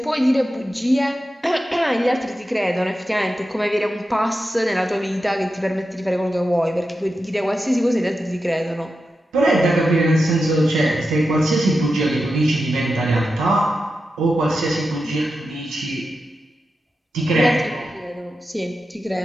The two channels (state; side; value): normal; both; correlation 0.90